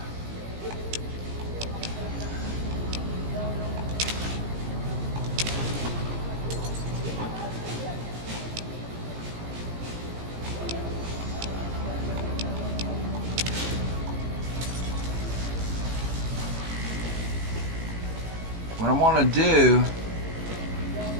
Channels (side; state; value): left; late; 17 ms